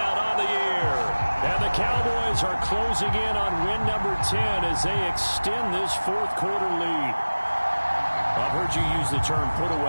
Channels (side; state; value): both; inverted; correlation -1.00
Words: on the year. And the Cowboys are closing in on win number 10 as they extend this 4th quarter lead. I've heard you use the term